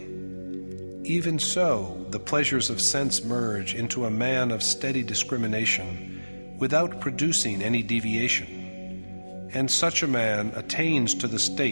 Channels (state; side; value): inverted; both; correlation -1.00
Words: even so the pleasures of sense merge into a man of steady discrimination without producing any deviation, and such a man attains to the